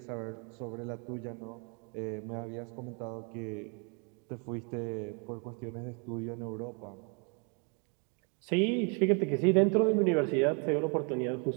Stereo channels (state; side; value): quieter; left; 36.2 dB